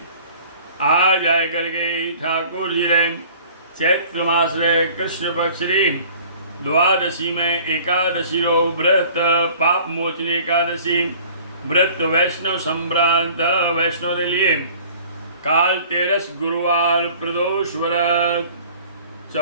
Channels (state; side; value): inverted; both; correlation -0.49